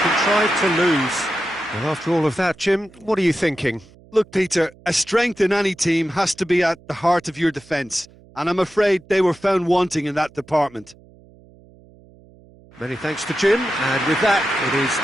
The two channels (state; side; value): noise; right; hum, 26 dB below the sound